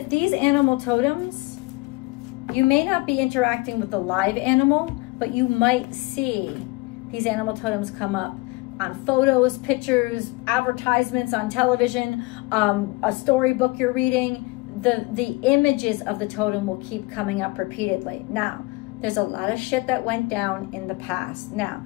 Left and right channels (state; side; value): quieter; right; 24.1 dB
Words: these animal totems, you may not be interacting with the live animal, but you might see these animal totems come up on photos, pictures, advertisements on television, a storybook you're reading. The images of the totem will keep coming up repeatedly. Now, there's a lot of shit that went down in the past. Now,